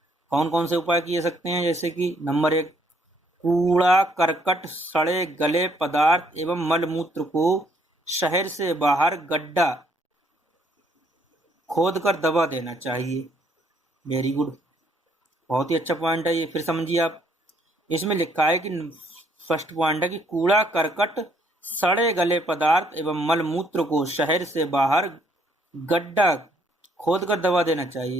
कौन कौन से उपाय किए सकते हैं, जैसे कि नंबर 1, कूड़ा करकट, सड़े गले पदार्थ एवं मलमूत्र को शहर से बाहर गड्ढा खोद कर दबा देना चाहिए। वेरी गुड, बहुत ही अच्छा पॉइंट है ये। फिर समझिए आप, इसमें लिखा है कि फर्स्ट पॉइंट है कि कूड़ा करकट, सड़े गले पदार्थ एवं मलमूत्र को शहर से बाहर गड्ढा खोद कर दबा देना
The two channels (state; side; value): normal; both; correlation 0.68